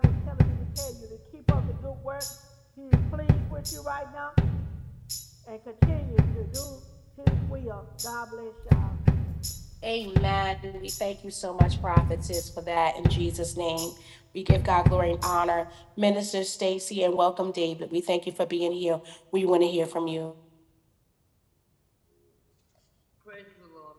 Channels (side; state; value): both; identical; correlation 1.00